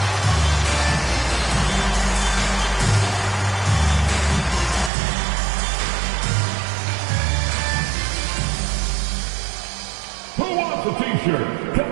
Who wants a t-shirt? Come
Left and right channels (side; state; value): left; drops out; at 4.9 s